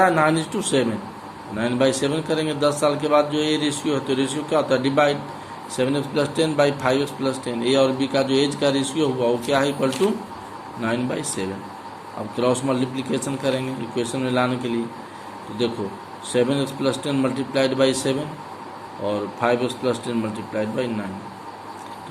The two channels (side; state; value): both; identical; correlation 1.00